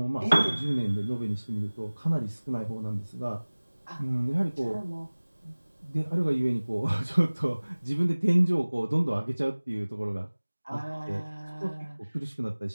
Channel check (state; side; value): inverted; both; correlation -1.00